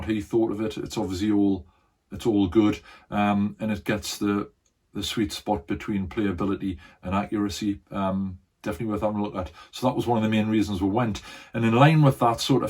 he thought of it. It's obviously all good, and it gets the sweet spot between playability and accuracy. Definitely worth having a look at. So that was one of the main reasons we went. And in line with that, sort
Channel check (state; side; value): identical; both; correlation 1.00